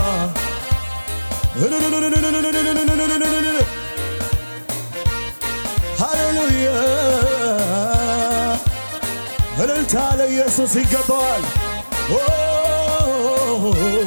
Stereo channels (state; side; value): inverted; both; correlation -1.00